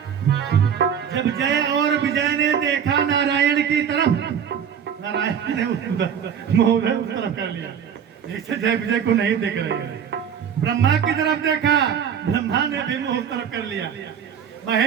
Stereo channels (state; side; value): quieter; left; 8.1 dB